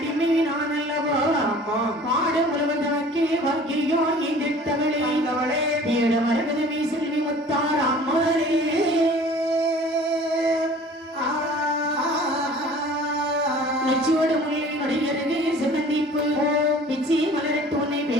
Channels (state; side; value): normal; both; correlation 0.47